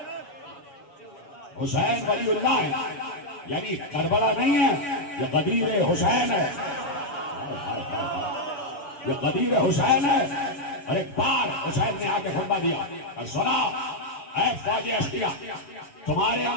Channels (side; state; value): right; late; 7.1 ms